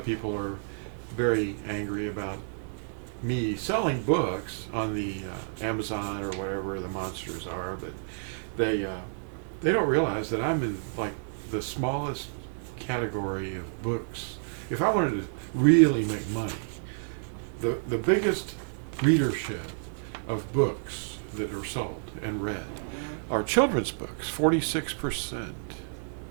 people are very angry about me selling books on the Amazon or whatever the monsters are, but they don't realize that I'm in like the smallest category of books. If I wanted to really make money, the biggest readership of books that are sold and read are children's books, 46%.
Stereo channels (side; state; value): left; silent; 58 dB below the other